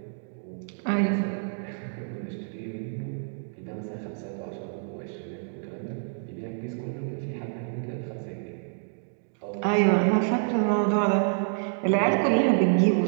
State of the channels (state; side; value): silent; left; digital silence